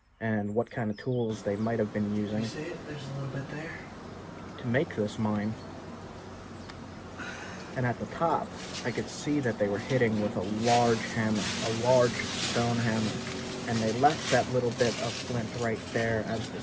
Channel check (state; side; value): identical; both; correlation 1.00